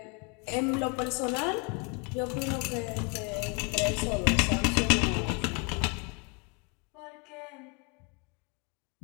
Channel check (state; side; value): quieter; right; 32.9 dB